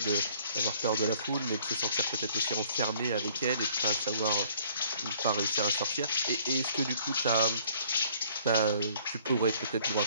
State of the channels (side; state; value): both; inverted; correlation -0.58